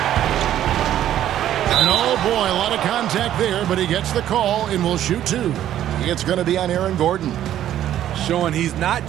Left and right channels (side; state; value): left; quieter; 11.7 dB